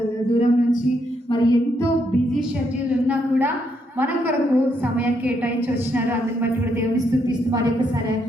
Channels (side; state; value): both; normal; correlation 0.76